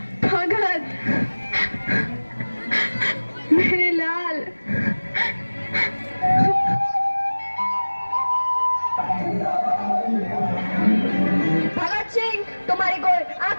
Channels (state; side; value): inverted; both; correlation -1.00